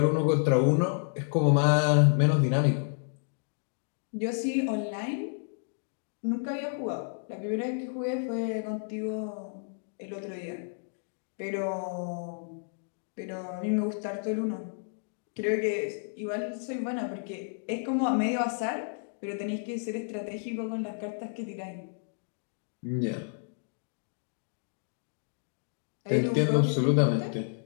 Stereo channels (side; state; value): right; silent; digital silence